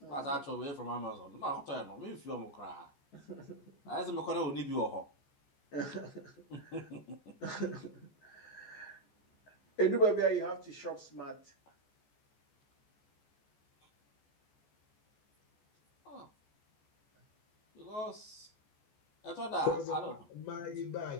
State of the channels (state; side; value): late; right; 14 ms